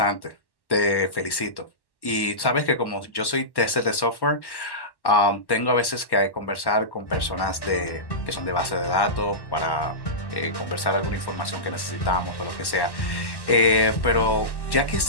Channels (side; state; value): right; late; 1.1 ms